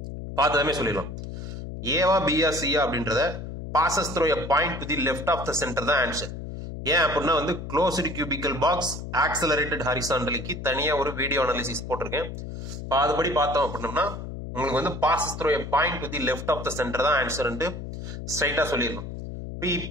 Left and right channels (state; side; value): noise; left; hum, 8 dB below the sound